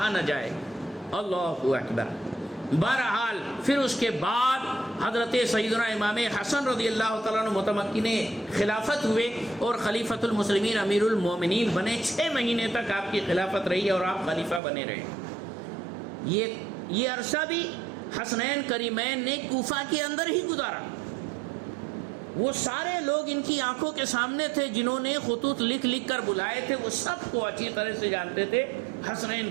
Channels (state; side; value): drops out; left; at 14.6 s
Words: نہ جائے۔ اللہ اکبر۔ بہرحال پھر اس کے بعد حضرت سیدنا امام حسن رضی اللہ تعالیٰ عنہ متمکن خلافت ہوئے اور خلیفۃ المسلمین امیر المومنین بنے۔ 6 مہینے تک آپ کی خلافت رہی اور آپ خلیفہ بنے رہے۔ یہ عرصہ بھی حسنین کریمین نے کوفہ کے اندر ہی گزارا۔ وہ سارے لوگ ان کی آنکھوں کے سامنے تھے، جنہوں نے خطوط لکھ لکھ کر بلائے تھے، وہ سب کو اچھی طرح سے جانتے تھے حسنین